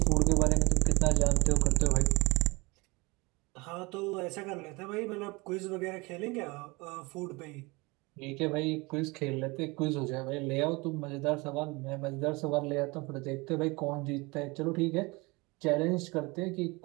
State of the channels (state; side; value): quieter; left; 25.2 dB